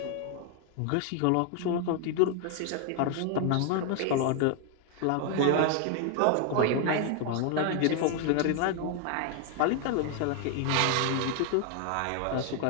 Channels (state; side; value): different; both; correlation 0.00